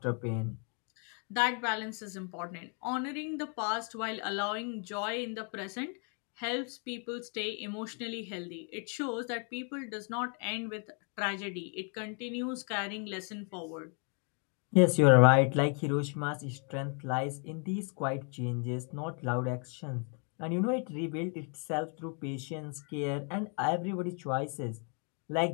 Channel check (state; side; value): quieter; right; 39.5 dB